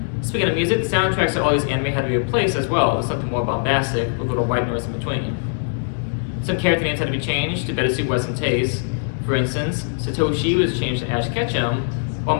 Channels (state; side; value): silent; right; digital silence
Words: Speaking of music, the soundtracks of all these anime had to be replaced as well with something more bombastic, with a little white noise in between. Some character names had to be changed to better suit Western tastes. For instance, Satoshi was changed to Ash Ketchum, while